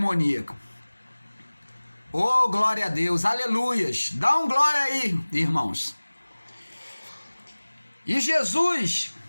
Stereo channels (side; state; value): both; inverted; correlation -1.00